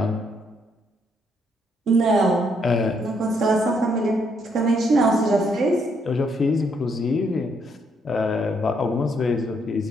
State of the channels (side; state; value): both; normal; correlation 0.73